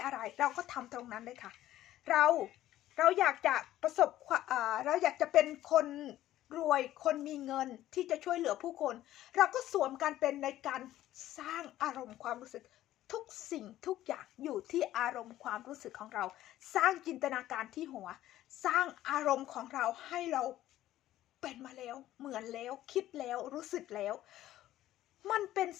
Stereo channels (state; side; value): quieter; right; 13.9 dB